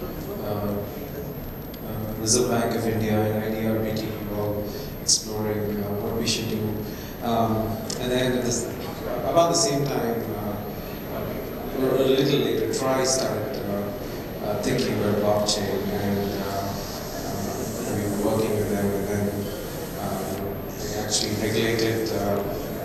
Reserve Bank of India and IDRBT all exploring what we should do. And then about the same time, or a little later, TRI started thinking about blockchain, and we were working with them, and then they actually regulated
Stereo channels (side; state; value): both; identical; correlation 1.00